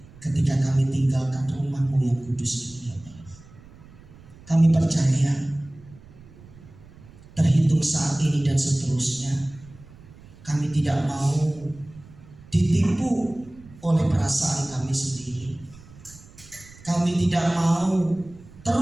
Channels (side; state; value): right; noise; rumble, 22 dB below the sound